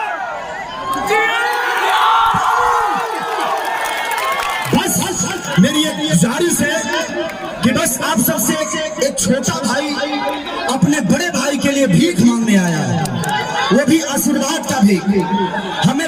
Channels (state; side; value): identical; both; correlation 1.00